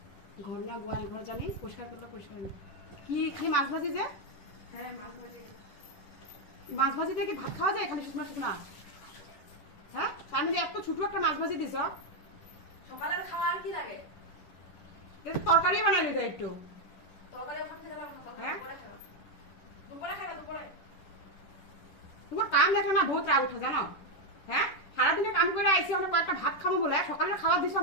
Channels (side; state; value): right; late; 10 ms